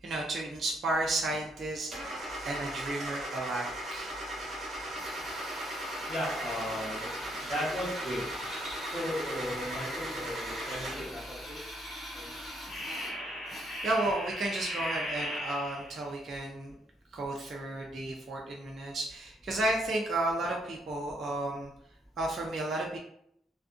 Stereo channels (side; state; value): both; normal; correlation 0.71